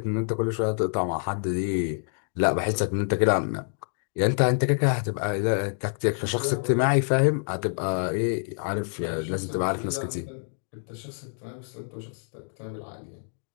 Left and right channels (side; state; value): right; silent; digital silence